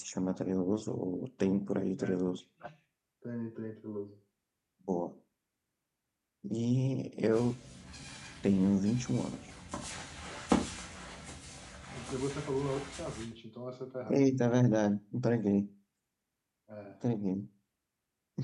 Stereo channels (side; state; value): both; identical; correlation 1.00